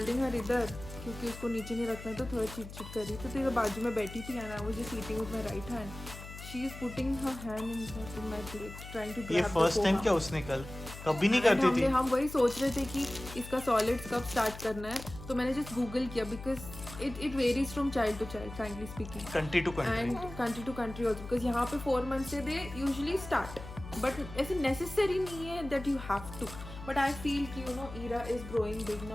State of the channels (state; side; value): noise; left; hum, 13 dB below the sound